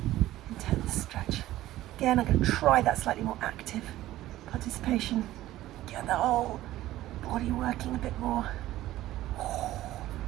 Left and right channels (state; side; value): quieter; left; 15.1 dB